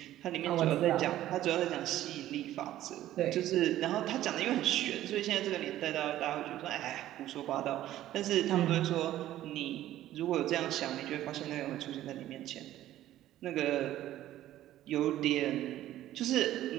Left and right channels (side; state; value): left; quieter; 13.6 dB